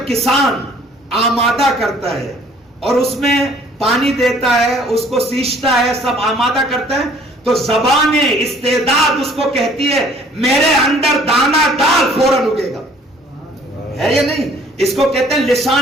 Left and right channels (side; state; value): both; normal; correlation 0.56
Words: کسان آمادہ کرتا ہے اور اس میں پانی دیتا ہے، اس کو سینچتا ہے، سب آمادہ کرتا ہے، تو زبان استعداد اس کو کہتی ہے میرے اندر دانا ڈال فوراً اگے گا. ہے یا نہیں؟ اس کو کہتے ہیں